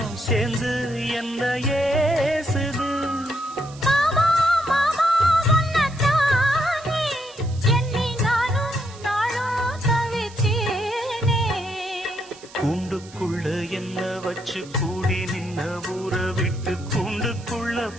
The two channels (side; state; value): right; noise; hiss, 21 dB below the sound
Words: சேர்ந்து என்ன ஏசுது. கூண்டுக்குள்ள என்ன வச்சு கூடி நின்ன ஊற விட்டு கூண்டுக்குள்ள